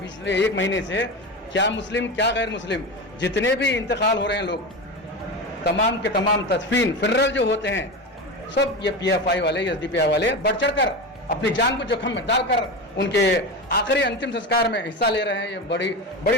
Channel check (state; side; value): normal; both; correlation 0.23